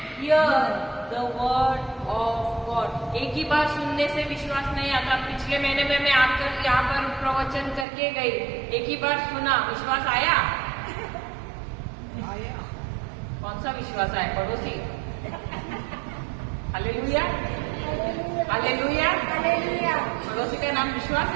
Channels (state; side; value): drops out; left; at 7.9 s